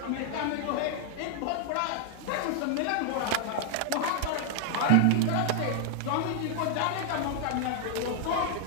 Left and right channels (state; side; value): different; both; correlation 0.00